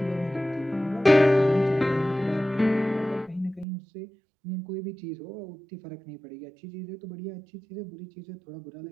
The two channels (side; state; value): left; drops out; at 3.7 s